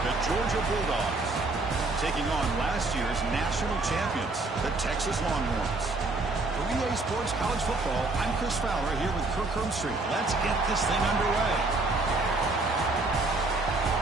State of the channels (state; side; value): quieter; left; 3.3 dB